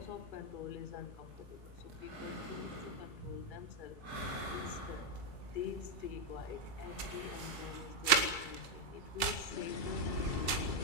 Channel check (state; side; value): late; right; 2.3 ms